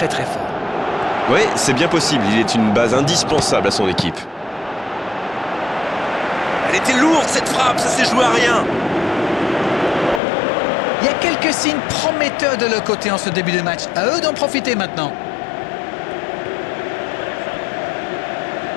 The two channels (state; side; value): drops out; right; at 10.2 s